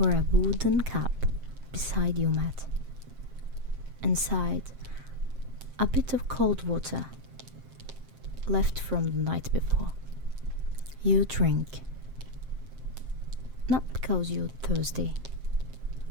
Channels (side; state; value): left; late; 7.6 ms